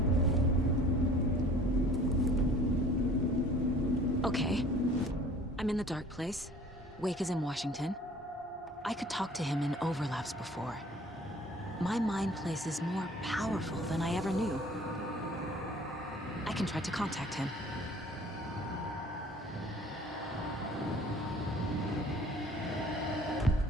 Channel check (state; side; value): normal; both; correlation 0.50